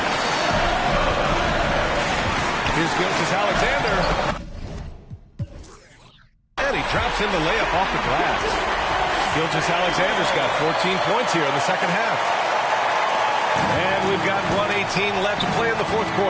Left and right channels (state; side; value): identical; both; correlation 1.00